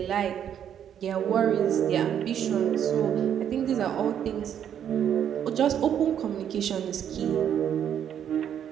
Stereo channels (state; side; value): quieter; left; 9.3 dB